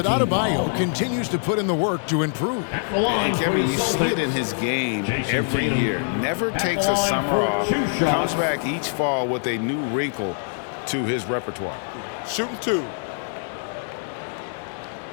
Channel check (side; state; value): right; silent; digital silence